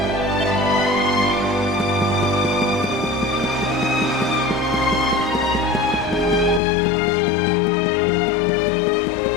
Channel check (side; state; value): right; drops out; at 6.6 s